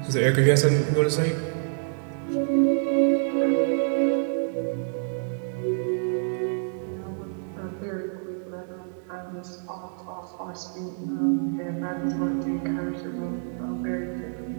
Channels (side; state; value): left; silent; digital silence